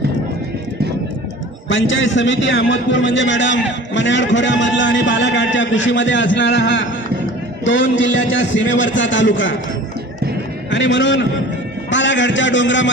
पंचायत समिती अहमदपूर म्हणजे मॅडम मन्याड खोऱ्यामधला आणि बालाघाटच्या कुशीमध्ये असणारा हा 2 जिल्ह्याच्या सीमेवरचा तालुका आणि म्हणून बालाघाटच्या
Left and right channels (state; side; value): normal; both; correlation 0.43